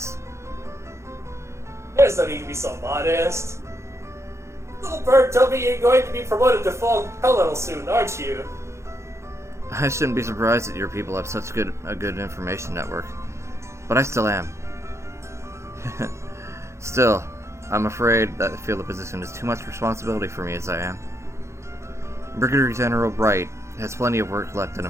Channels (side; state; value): left; late; 0.14 ms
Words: There's no need to be so modest. Little bird told me you're going to be promoted to full colonel soon, aren't you? I shouldn't be surprised that your people have such a good information network. But I still am. Still, I'm afraid that I feel the position is too much responsibility for me as I am. Brigadier General Bright has plenty of work left in